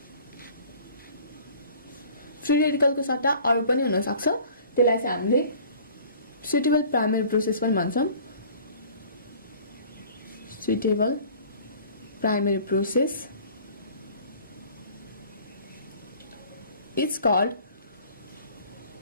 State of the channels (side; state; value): both; inverted; correlation -0.49